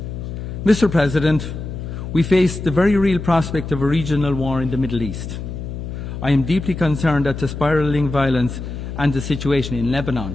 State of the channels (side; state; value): left; noise; hum, 7 dB below the sound